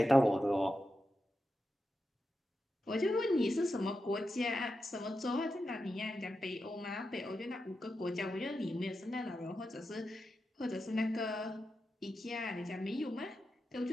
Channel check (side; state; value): both; normal; correlation 0.89